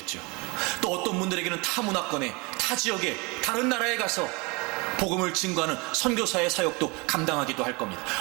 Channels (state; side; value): quieter; left; 27.5 dB